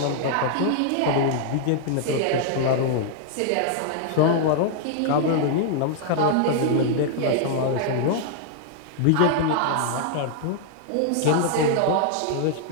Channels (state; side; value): different; both; correlation -0.01